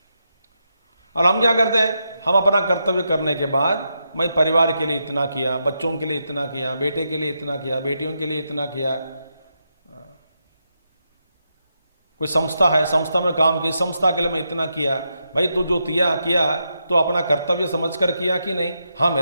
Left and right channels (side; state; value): both; inverted; correlation -0.84